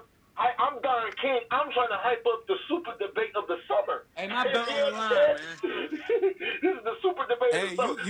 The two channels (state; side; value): identical; both; correlation 1.00